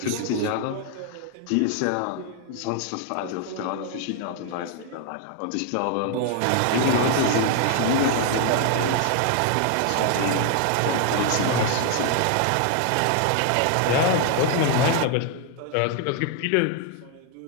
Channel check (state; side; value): different; both; correlation 0.00